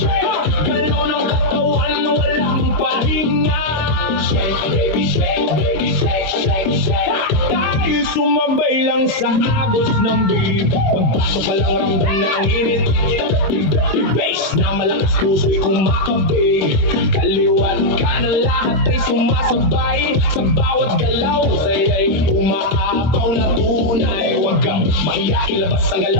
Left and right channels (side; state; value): right; late; 26 ms